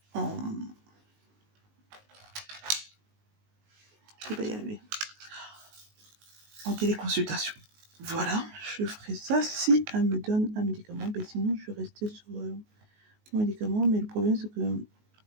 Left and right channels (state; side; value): late; left; 19 ms